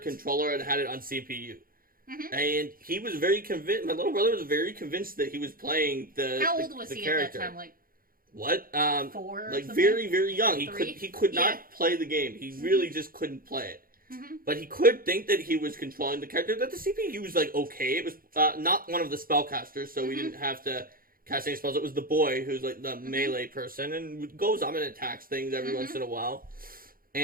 controller and had it on CPU. And he was very convinced, my little brother was very convinced that he was playing the How old was the he character. at that time? Like what? 4 or like something? very, very young. Three? He could not play the game. He really just couldn't play it. But he could think that he was controlling the character. That the CPU was like okay. It was not one of the spellcasters, so we didn't have to cast any spells. It was the boy who's like the melee person and goes up and attacks things every once in a while.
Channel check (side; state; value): left; late; 0.42 ms